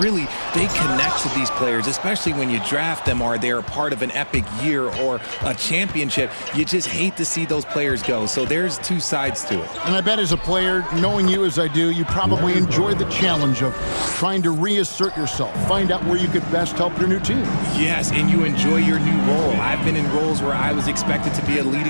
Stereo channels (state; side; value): inverted; both; correlation -1.00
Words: they connect to these players, especially when you draft them or they're a part of an epic year or a championship. You just hate to see those players go. So there's two sides to it. And I bet as a player, knowing you as I do, you probably enjoy the challenge of trying to reassert yourself, find out where you could best help your new team. Yes, and you enjoy your new role. I've been in roles where I was expected to be a